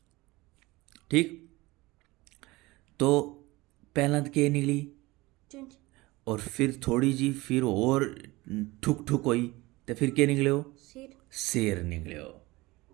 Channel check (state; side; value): quieter; left; 21.0 dB